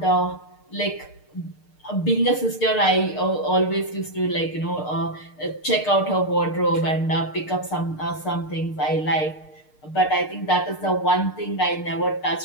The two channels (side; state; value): right; late; 6.6 ms